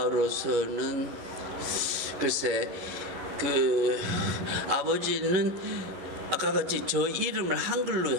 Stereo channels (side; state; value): left; late; 11 ms